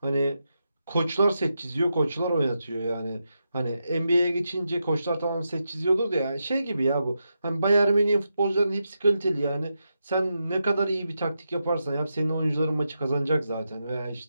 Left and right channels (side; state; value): both; inverted; correlation -0.86